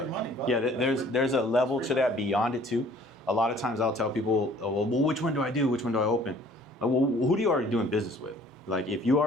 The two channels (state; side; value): normal; both; correlation 0.54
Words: money, bro. there's a level to that beyond it too. A lot of times I'll tell people, oh, well, which one do I do? Which one do I open? Well, who do you already doing business with? Like if you